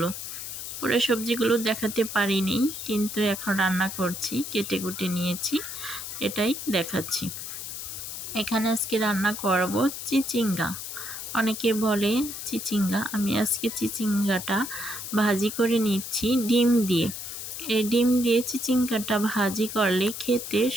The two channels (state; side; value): noise; left; hiss, 7 dB below the sound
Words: পুরো সবজিগুলো দেখাতে পারিনি, কিন্তু এখন রান্না করছি, কেটে কুটে নিয়েছি, এটাই দেখাচ্ছি। এখানে আজকে রান্না করব চিচিঙ্গা। অনেকে বলে চিচিঙ্গা, আমি আজকে চিচিঙ্গাটা ভাজি করে নিচ্ছি ডিম দিয়ে। এই ডিম দিয়ে চিচিঙ্গাটা ভাজি করলে খেতে